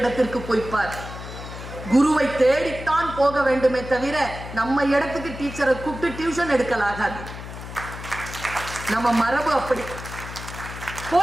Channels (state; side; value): noise; left; hum, 11 dB below the sound